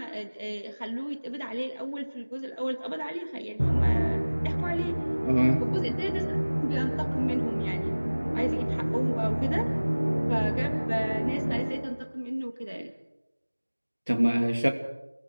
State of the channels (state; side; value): inverted; both; correlation -1.00